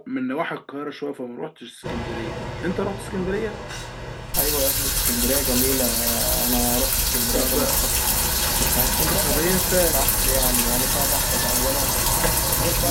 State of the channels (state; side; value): identical; both; correlation 1.00